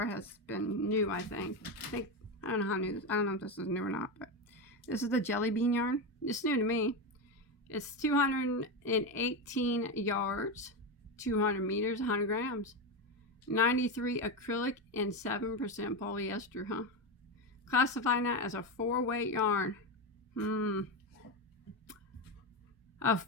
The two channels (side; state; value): both; normal; correlation 0.14